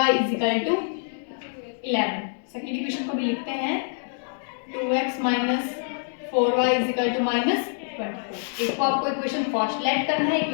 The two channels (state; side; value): silent; right; digital silence